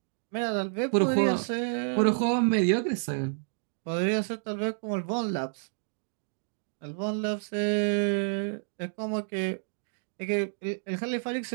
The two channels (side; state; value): left; silent; digital silence